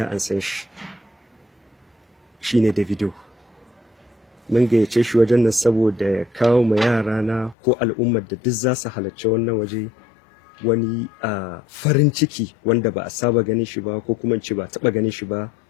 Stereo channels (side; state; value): right; drops out; at 7.6 s